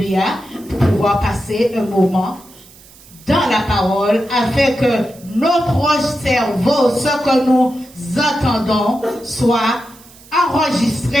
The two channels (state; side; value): noise; right; hiss, 23 dB below the sound